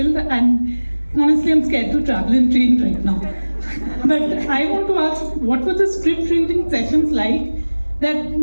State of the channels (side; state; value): both; inverted; correlation -1.00